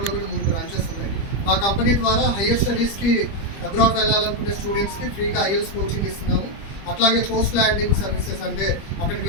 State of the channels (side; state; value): right; late; 25 ms